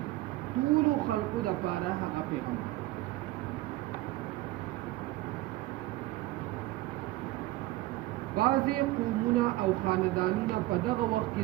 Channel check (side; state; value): left; quieter; 17.7 dB